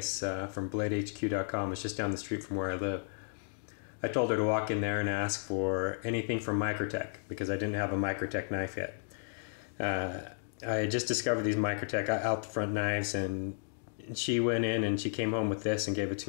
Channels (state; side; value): silent; right; digital silence